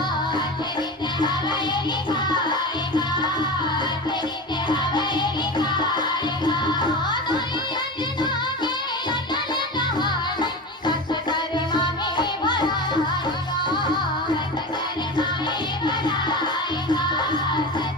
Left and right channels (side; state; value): both; normal; correlation 0.27